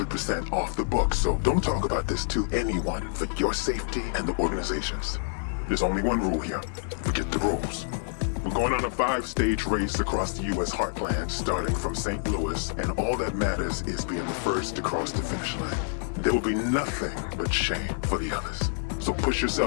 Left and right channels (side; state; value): right; silent; digital silence